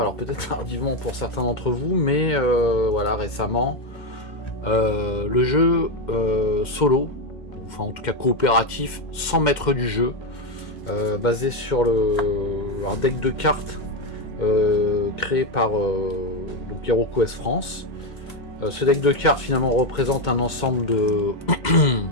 peut-être tardivement pour certains d'entre vous, mais voilà, récemment, le jeu solo, enfin en tout cas coopératif, sans maître du jeu, basé sur un deck de cartes créé par donc HeroQuest France. Ce deck de cartes finalement représente un ensemble de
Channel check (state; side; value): late; right; 2.2 ms